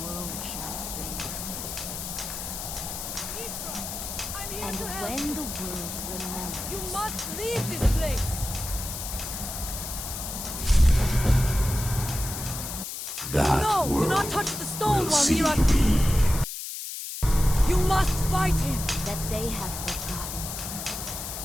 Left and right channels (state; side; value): noise; left; hiss, 7 dB below the sound